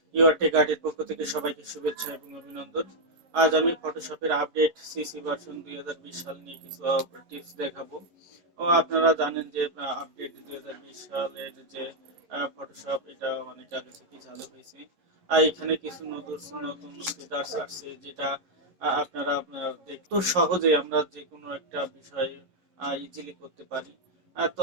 your take আর্টের পক্ষ থেকে সবাইকে শুভেচ্ছা এবং অভিনন্দন। আজ আমি ফটোশপের আপডেট সিসি ভার্সন 2020 সাল নিয়ে কিছু টিপস দেখাবো। আপনারা জানেন যে আপডেট 2020 সালের যে ফটোশপ এটা অনেক আগে থেকেই চালু হয়েছে। আর এখানে কিছু নতুন নতুন ফিচার্স আসছে যেটা আপনারা দেখতে সহজে আমরা যে কোনো একটা বিষয় ইজিলি করতে পারি। তো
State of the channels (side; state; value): left; late; 11 ms